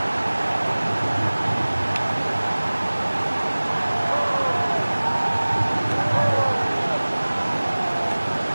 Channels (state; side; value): inverted; both; correlation -1.00